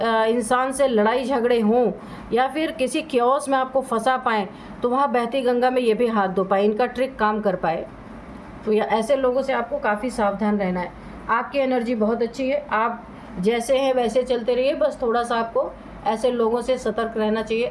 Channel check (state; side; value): identical; both; correlation 1.00